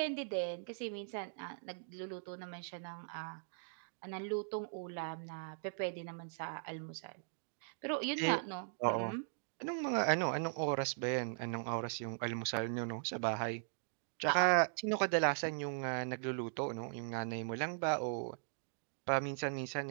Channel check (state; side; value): silent; left; digital silence